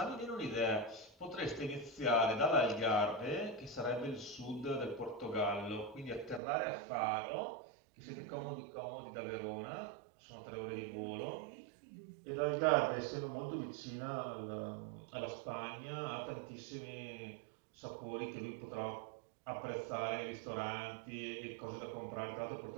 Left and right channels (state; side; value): drops out; left; at 6.4 s